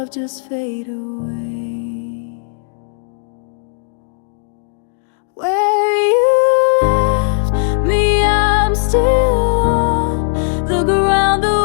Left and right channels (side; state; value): right; silent; digital silence